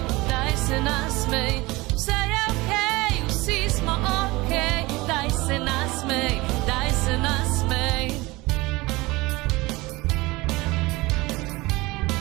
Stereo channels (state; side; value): quieter; left; 21.9 dB